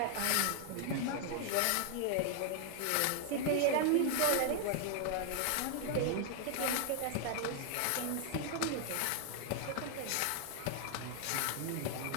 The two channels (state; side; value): different; both; correlation 0.00